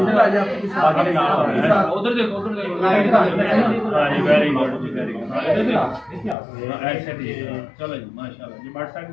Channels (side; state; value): right; drops out; at 6.4 s